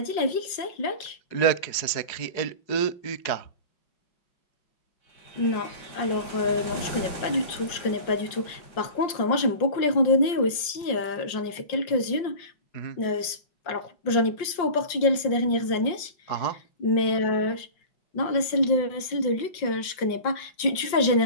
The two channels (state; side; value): late; right; 5.6 ms